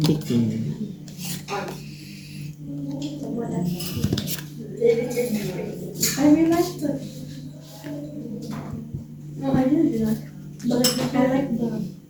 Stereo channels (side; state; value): both; identical; correlation 1.00